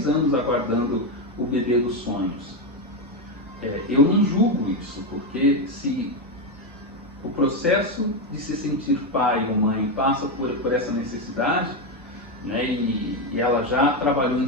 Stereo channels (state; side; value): normal; both; correlation 0.09